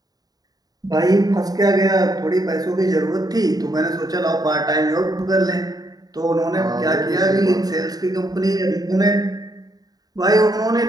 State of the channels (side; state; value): left; late; 0.18 ms